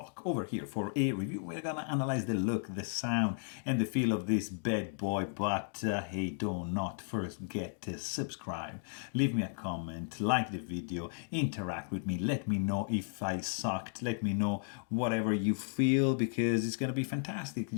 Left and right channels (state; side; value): silent; right; digital silence